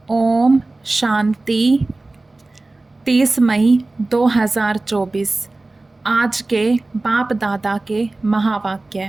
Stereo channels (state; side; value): quieter; left; 3.1 dB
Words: ओम शांति। 30 मई 2024 आज के बाप दादा के